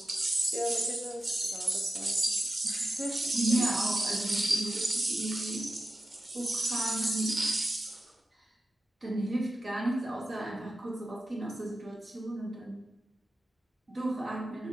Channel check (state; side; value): normal; both; correlation 0.92